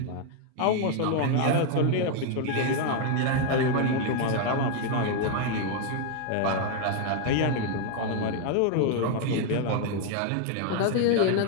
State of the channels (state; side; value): different; both; correlation 0.00